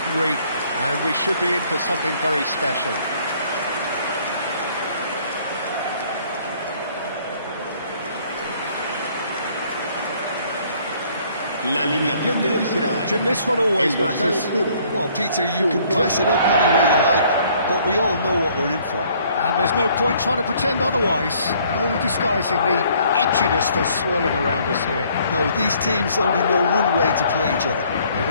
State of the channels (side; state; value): both; inverted; correlation -0.61